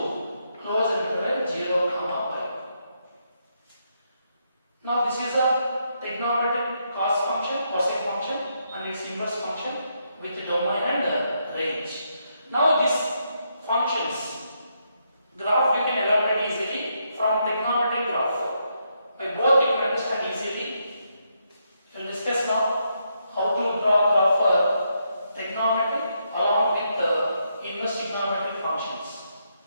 close interval 0 comma pi. Now this is a trigonometric cos function, cosine function and its inverse function with domain and range. Now these functions graph we can elaborate easily from trigonometric graph. By both you can understand easily. We will discuss now how to draw graph for trigonometry along with the inverse trigonometric functions.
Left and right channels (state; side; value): inverted; both; correlation -0.79